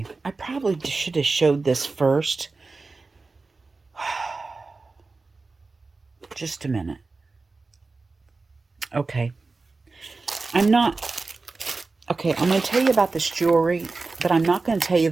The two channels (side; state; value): left; quieter; 3.8 dB